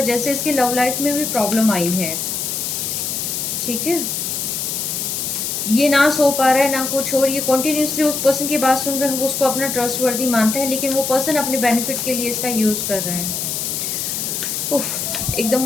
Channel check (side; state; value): left; noise; hiss, 2 dB below the sound